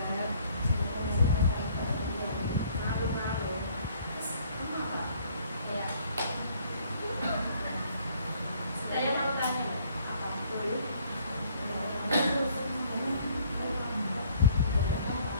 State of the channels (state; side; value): inverted; both; correlation -0.60